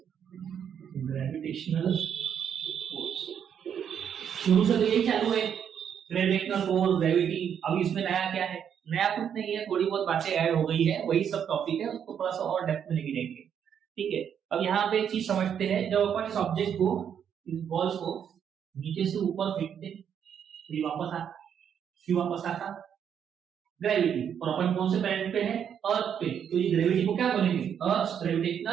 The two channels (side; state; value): left; quieter; 8.4 dB